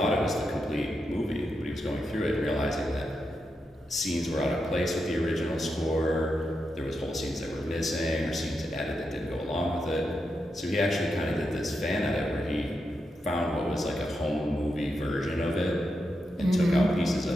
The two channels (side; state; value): both; normal; correlation 0.86